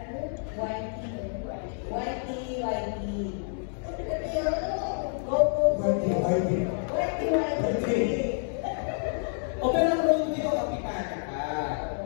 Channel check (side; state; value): right; silent; digital silence